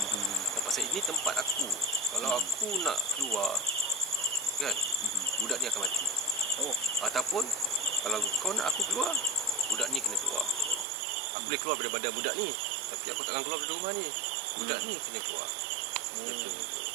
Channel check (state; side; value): drops out; left; at 10.9 s